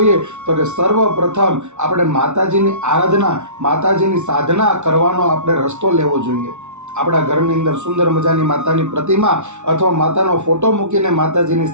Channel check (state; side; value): late; left; 0.83 ms